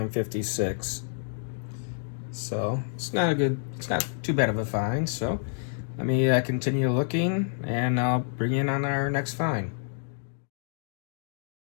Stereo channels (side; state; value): right; silent; digital silence